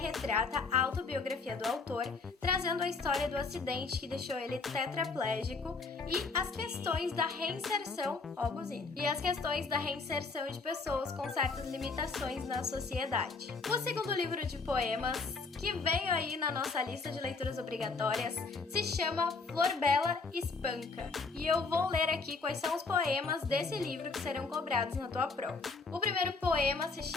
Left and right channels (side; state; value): right; quieter; 4.2 dB